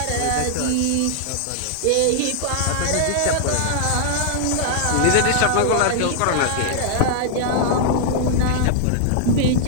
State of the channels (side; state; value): both; different; correlation 0.00